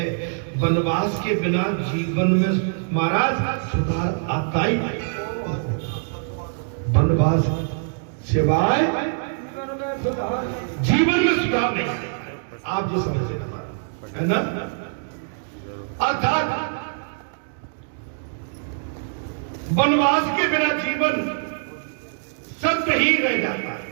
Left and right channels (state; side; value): silent; left; digital silence